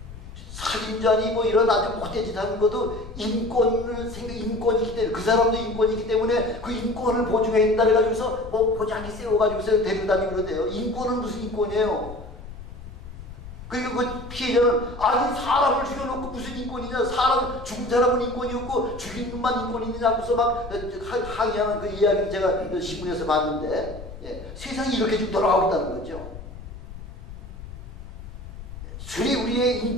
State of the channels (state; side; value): noise; left; rumble, 13 dB below the sound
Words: 살인자니 뭐 이런 아주 못된 짓 하는 것도 인권이기 때문에 그 사람도 인권이기 때문에 그 인권을 보증했다 해가지고서 뭐 보장기 세워가지고서 데려다니고 그러대요. 인권은 무슨 인권이에요? 그러니까 그 피해자는 아니 사람을 죽여놓고 무슨 인권이냐, 죽은 사람은 인권이 없고 죽인 놈만 인권이 있느냐 하고서 막 항의하는 그 이야기를 제가 신문에서 봤는데 세상이 이렇게 지금 돌아가고 있다는 거죠. 술이 우리의